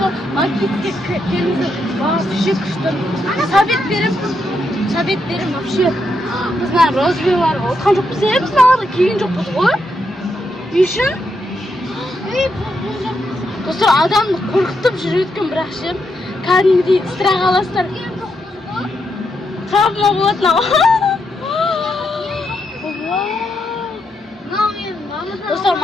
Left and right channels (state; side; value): normal; both; correlation 0.81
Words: maketga keldi. Вообще kuchli. Sovet berim вообще. Bizlar rozviyalar o'tgan jo'qmiz, bizlar keyin jo'qmiz qo'y. Yushin. Do'stlar, odamni qo'rqitib yurayotgan bir yaxshi. Qanday istirah olasizlar. Travma bo'ladi. Do'stlar,